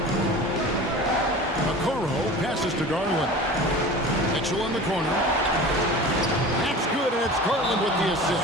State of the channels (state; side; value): normal; both; correlation 0.37